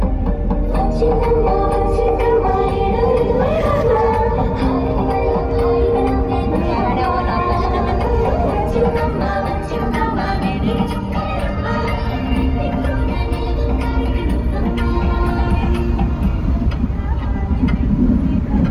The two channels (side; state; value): both; identical; correlation 1.00